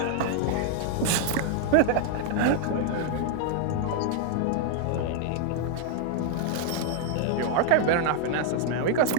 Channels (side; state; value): both; different; correlation 0.00